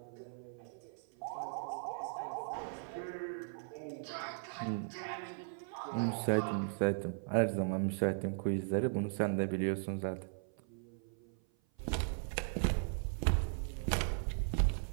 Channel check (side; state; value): left; silent; 52 dB below the other